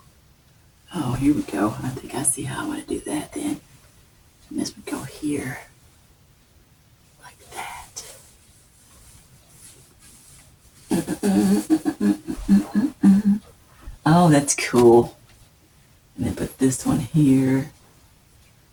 Oh, here we go. I think I see how I want to do that then. And this would go here. Oh, that's cool. And then put this one here.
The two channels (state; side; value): identical; both; correlation 1.00